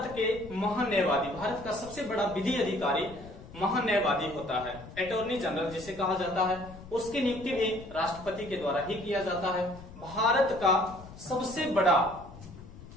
के महान्यायवादी, भारत का सबसे बड़ा विधि अधिकारी महान्यायवादी होता है, अटॉर्नी जनरल जिसे कहा जाता है, उसकी नियुक्ति भी राष्ट्रपति के द्वारा ही किया जाता है। भारत का सबसे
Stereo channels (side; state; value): left; noise; rumble, 16 dB below the sound